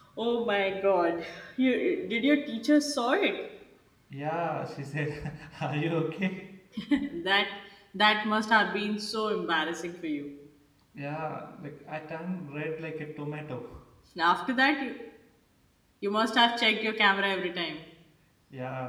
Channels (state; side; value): identical; both; correlation 1.00